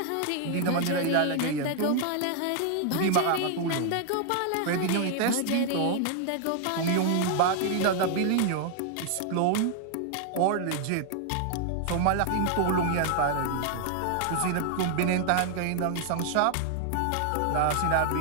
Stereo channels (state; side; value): different; both; correlation 0.00